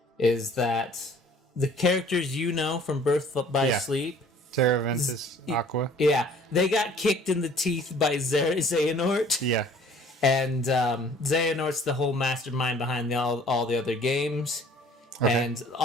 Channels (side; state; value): both; normal; correlation 0.53